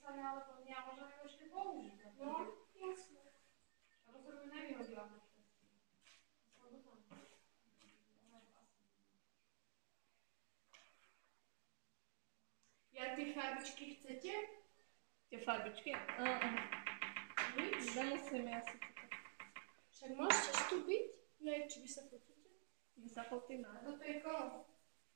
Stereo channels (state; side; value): silent; left; digital silence